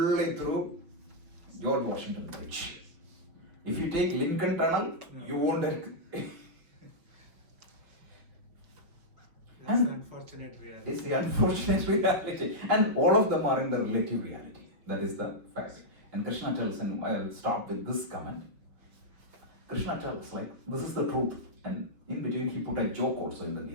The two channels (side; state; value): left; late; 5.5 ms